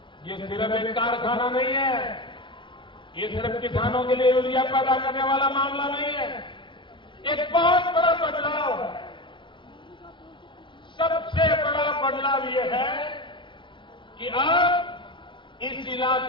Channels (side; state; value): right; late; 0.24 ms